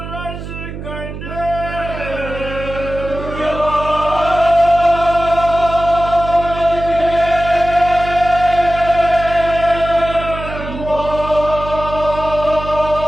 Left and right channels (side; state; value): right; noise; hum, 9 dB below the sound